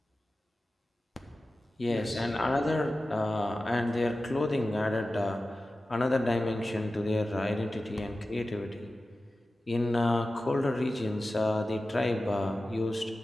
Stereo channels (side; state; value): both; normal; correlation 0.95